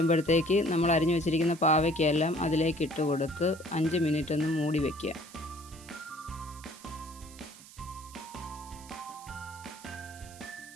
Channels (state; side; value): noise; right; hiss, 19 dB below the sound